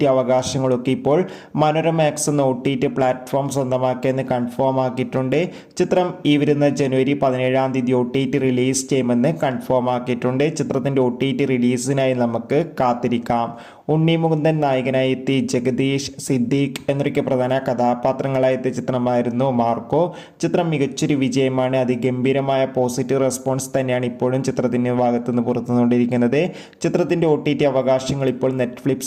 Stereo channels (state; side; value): identical; both; correlation 1.00